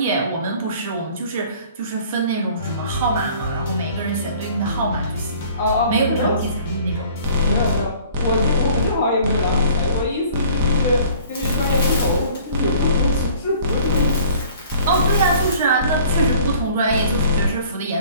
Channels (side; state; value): both; inverted; correlation -0.51